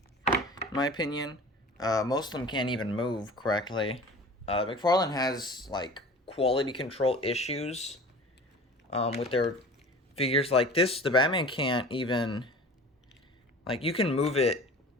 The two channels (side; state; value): both; normal; correlation 0.40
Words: in my opinion. Most of them can't even move correctly. McFarlane has like quality control issues with their figures like this. The Batman can't even. Like, you can move it,